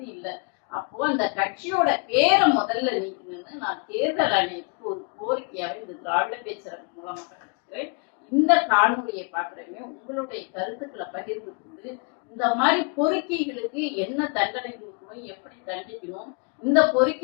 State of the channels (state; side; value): quieter; right; 35.5 dB